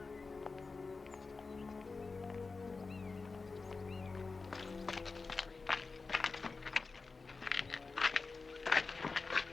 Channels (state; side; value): quieter; right; 4.1 dB